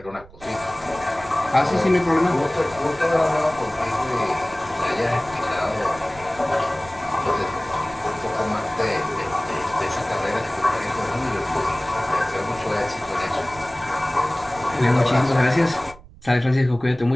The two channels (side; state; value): right; noise; rumble, 21 dB below the sound